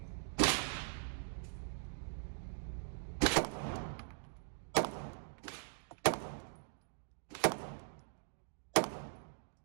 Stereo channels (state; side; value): silent; left; digital silence